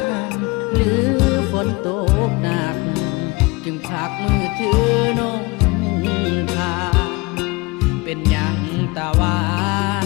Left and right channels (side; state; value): right; quieter; 24.6 dB